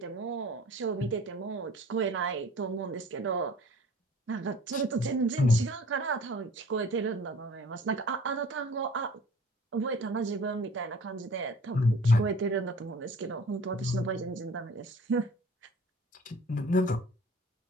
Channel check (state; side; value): normal; both; correlation 0.48